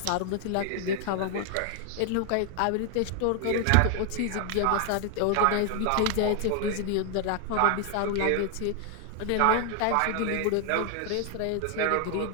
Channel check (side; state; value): both; different; correlation 0.00